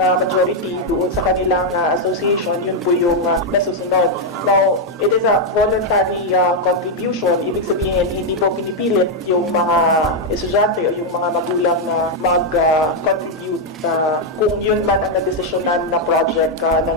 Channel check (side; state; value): both; normal; correlation 0.00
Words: majority doon sa kanilang association, yun po yung nasusunod. Now, it is a voluntary contribution. Ibig sabihin, hindi po pinipilit yung mga estudyante o yung mga magulang na mag-contribute kung yun man ang nadesisyonan na project